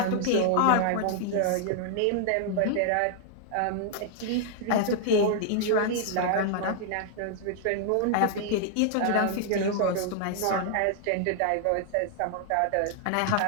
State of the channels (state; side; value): different; both; correlation -0.01